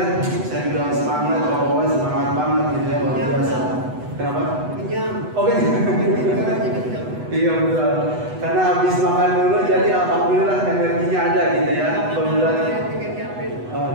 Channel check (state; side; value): late; left; 8.1 ms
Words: Saya juga semangat, pokoknya semangat banget gitu ya, luar biasa. Kenapa? Oke. Iya betul. Karena habis makan dulu jadi alhamdulillah energinya ada gitu ya. Kemudian